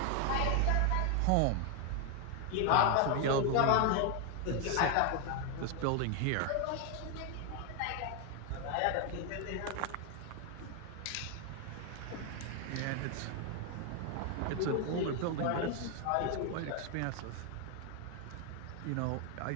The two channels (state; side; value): different; both; correlation 0.01